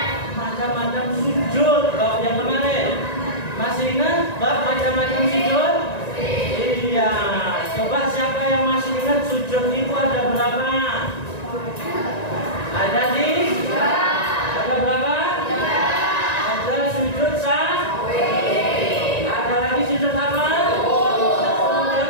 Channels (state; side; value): late; right; 1.9 ms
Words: macam-macam sujud. Bab yang kemarin masih ingat bab macam-macam sujud? Iya. Coba siapa yang masih ingat sujud itu ada berapa? Ada di? Ada berapa? Ada sujud ada lagi sujud apa?